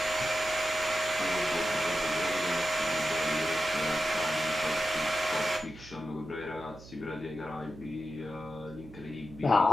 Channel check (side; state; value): right; noise; hum, 18 dB below the sound